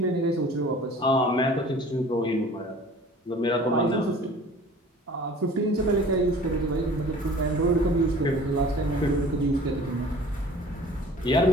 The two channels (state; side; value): normal; both; correlation 0.46